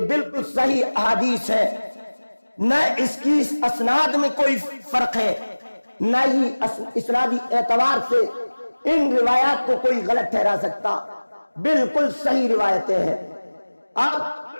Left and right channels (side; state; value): both; inverted; correlation -1.00